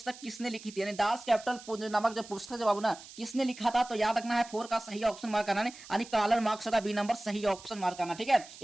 किसने लिखी थी, यानी दास कैपिटल नामक जो पुस्तक जो बाबू ना किसने लिखा था। तो याद रखना है 4 का सही ऑप्शन मार्क करना है, यानी कार्ल मार्क्स का बी नंबर सही ऑप्शन मार्क करना, ठीक है।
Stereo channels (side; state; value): right; noise; hiss, 17 dB below the sound